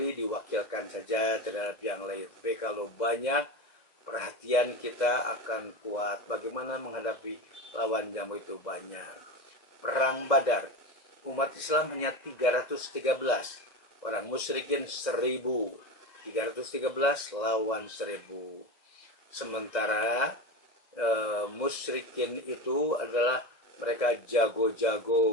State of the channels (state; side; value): late; right; 2.1 ms